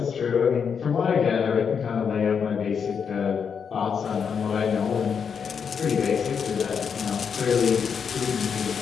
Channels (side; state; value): right; quieter; 6.7 dB